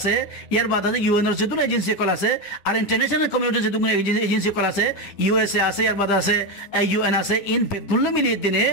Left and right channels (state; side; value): late; right; 10 ms